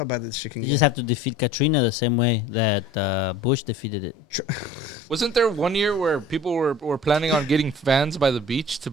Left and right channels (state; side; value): normal; both; correlation 0.44